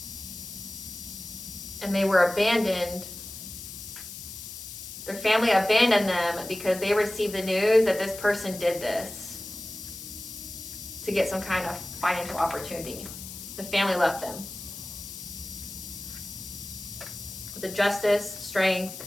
And they were abandoned. Their family abandoned them because they received the news that this person did this to get some kind of financial opportunity. The family left them. With the Justice, Strength,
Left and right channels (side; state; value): left; noise; hiss, 11 dB below the sound